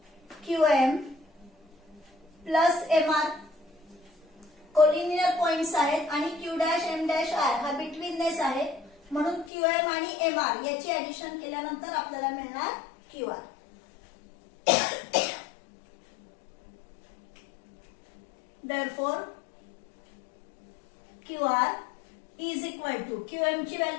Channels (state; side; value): drops out; right; at 9.5 s